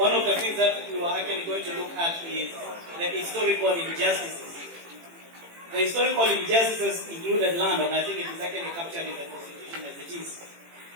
of the things that we were actually going to look at is the historical injustices. The historical injustices included land, and I think it is actually captured in the Constitution as it is.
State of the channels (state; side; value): late; left; 18 ms